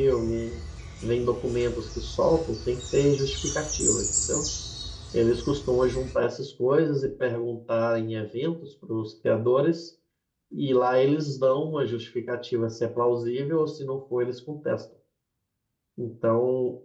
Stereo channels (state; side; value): identical; both; correlation 1.00